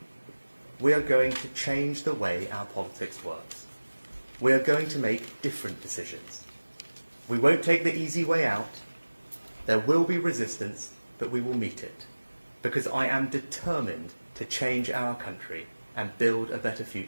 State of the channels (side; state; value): both; inverted; correlation -1.00